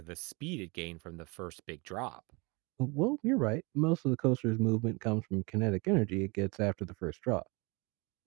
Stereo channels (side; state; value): left; quieter; 28.3 dB